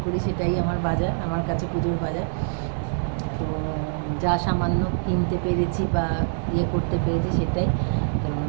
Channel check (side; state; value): left; silent; digital silence